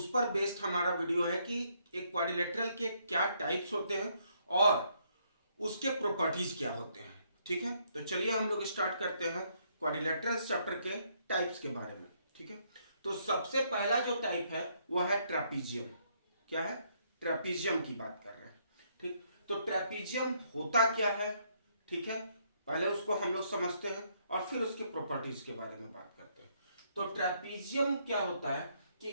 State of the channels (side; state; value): both; inverted; correlation -0.72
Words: पर बेस्ड हमारा वीडियो है कि एक क्वाड्रिलेटरल के क्या टाइप्स होते हैं और उसके प्रॉपर्टीज क्या होते हैं। ठीक है, तो चलिए हम लोग स्टार्ट करते हैं क्वाड्रिलेटरल्स चैप्टर के टाइप्स के बारे में। ठीक है, तो सबसे पहला जो टाइप है वो है ट्रेपीजियम। क्या है? ट्रेपीजियम की बात कर रहे हैं। ठीक, तो ट्रेपीजियम होता क्या है? ठीक है, पहले उसको हम लोग समझते हैं और फिर उसके प्रॉपर्टीज के बारे में बात करते हैं। तो ट्रेपीजियम क्या होता है कि